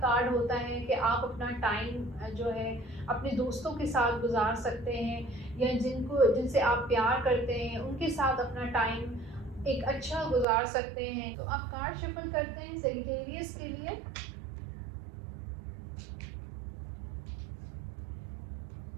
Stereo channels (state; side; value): drops out; left; at 10.5 s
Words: होता है कि आप अपना टाइम जो है अपने दोस्तों के साथ गुजार सकते हैं या जिनसे आप प्यार करते हैं उनके साथ अपना टाइम एक अच्छा गुजार सकते हैं। तो आप कार्ड शफल करते हैं सेजिटेरियस के लिए।